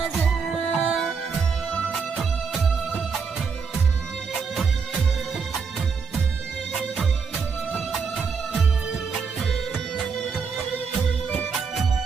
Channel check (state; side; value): quieter; left; 5.5 dB